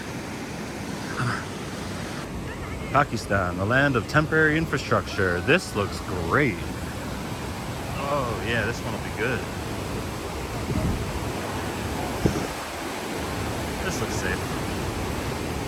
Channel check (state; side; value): identical; both; correlation 1.00